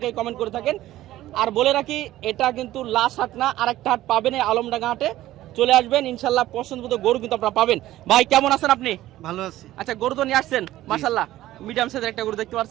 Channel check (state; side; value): quieter; left; 14.9 dB